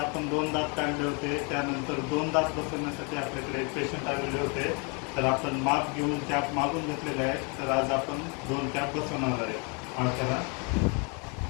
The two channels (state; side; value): quieter; right; 33.8 dB